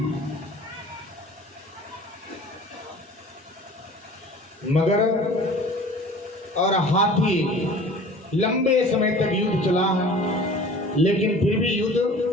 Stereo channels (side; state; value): both; normal; correlation 0.44